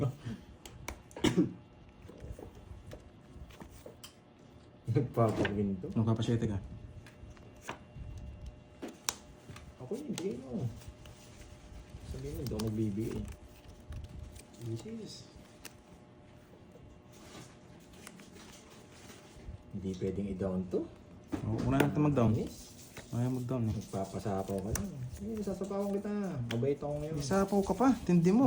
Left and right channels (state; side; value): identical; both; correlation 1.00